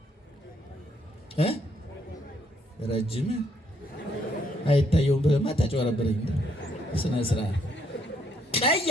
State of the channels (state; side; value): normal; both; correlation 0.70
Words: ረጅም አይታየውም። በማታጭ ወረበረኝ ስነ ስርዓት ቀይ